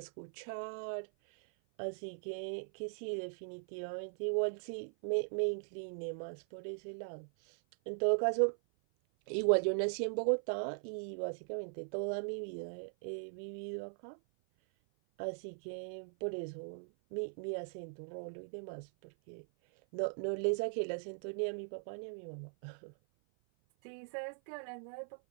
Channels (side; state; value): left; silent; 51 dB below the other